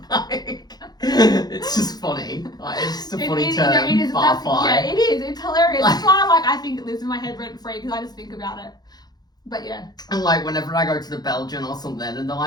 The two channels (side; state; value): right; late; 0.19 ms